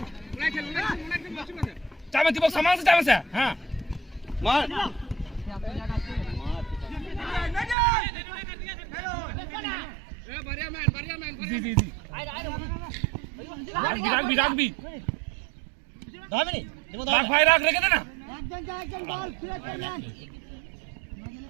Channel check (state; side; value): drops out; left; at 7.8 s